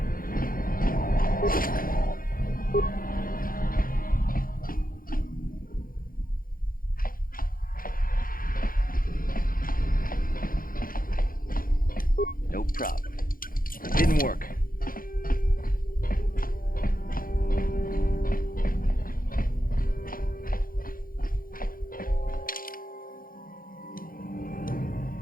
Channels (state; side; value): late; right; 0.41 ms